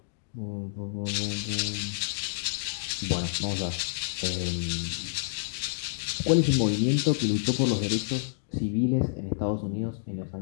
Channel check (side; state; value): right; silent; digital silence